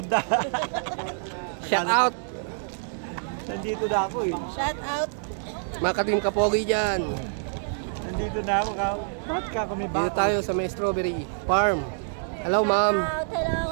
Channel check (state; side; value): silent; left; 61 dB below the other